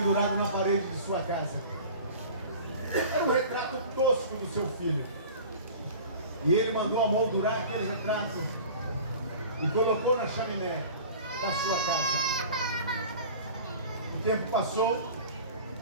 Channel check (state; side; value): inverted; both; correlation -0.41